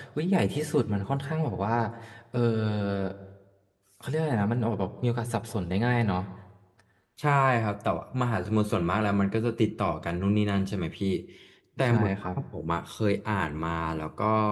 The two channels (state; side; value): identical; both; correlation 1.00